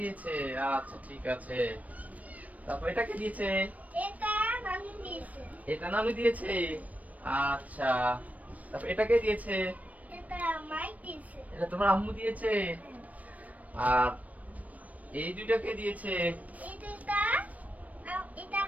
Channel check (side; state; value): left; late; 0.070 ms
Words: দিয়েছে। আচ্ছা ঠিক আছে। তারপর এটা কে দিয়েছে? এটা নানু দিয়েছে। আচ্ছা। তারপর এটা কে দিয়েছে? এটা তোমার আম্মু দিয়েছে। আর এই দুইটা কে দিয়েছে?